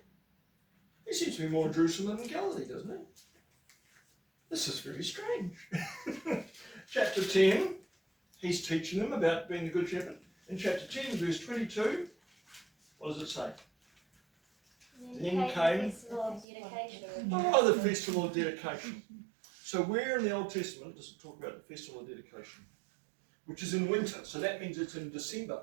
he seems to be more in Jerusalem than in Galilee, doesn't he? This is very strange. Chapter 10, he's teaching them about being the good shepherd. In chapter 10, verse 22, what does it say? Then came- the festival of dedication. Oh, the festival of dedication. So where in the Old Testament does it talk about the festival of dedication? Which is in winter, so that means it's in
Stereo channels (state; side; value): drops out; left; at 16.4 s